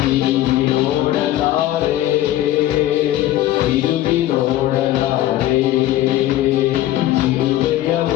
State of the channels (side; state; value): right; quieter; 14.2 dB